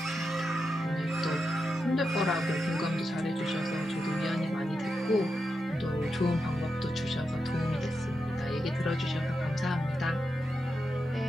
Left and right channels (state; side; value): normal; both; correlation 0.87